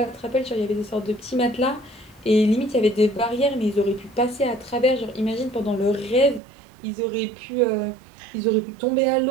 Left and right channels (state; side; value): drops out; left; at 6.4 s